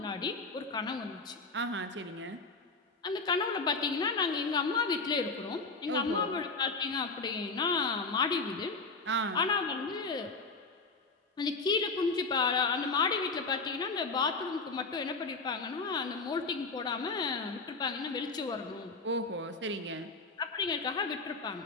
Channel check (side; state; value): right; quieter; 3.9 dB